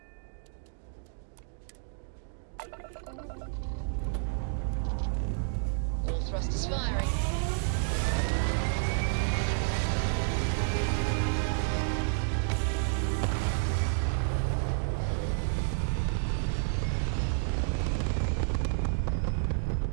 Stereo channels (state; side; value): silent; left; digital silence